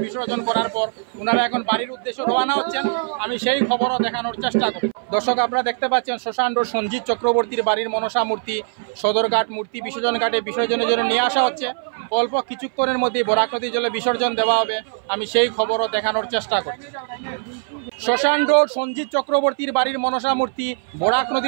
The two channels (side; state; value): left; silent; 60 dB below the other